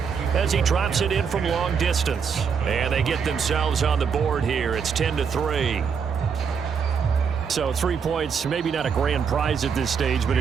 as he drops it in from long distance. And they get themselves on the board here. It's 10-3. So 3 points, maybe not a grand prize at this stage, but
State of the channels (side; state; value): left; quieter; 6.4 dB